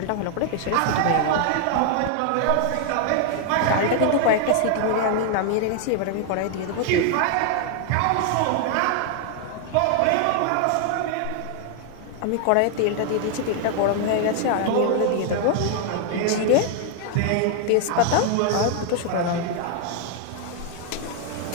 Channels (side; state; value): both; different; correlation 0.00